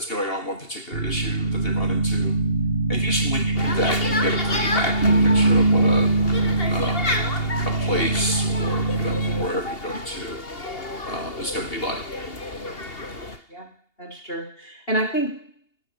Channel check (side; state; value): right; late; 2.8 ms